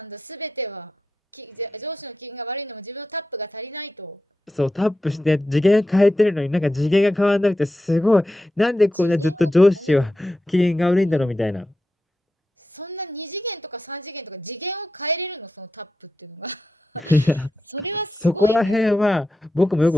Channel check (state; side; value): normal; both; correlation 0.89